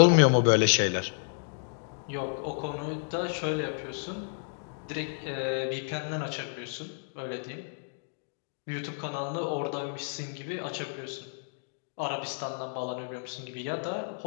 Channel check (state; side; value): silent; right; digital silence